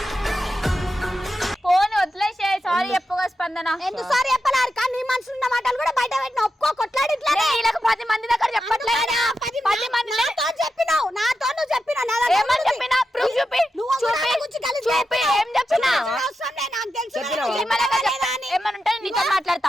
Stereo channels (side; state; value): both; normal; correlation 0.89